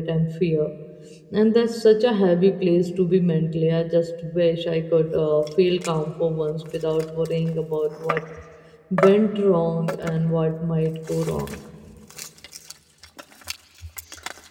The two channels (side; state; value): both; identical; correlation 1.00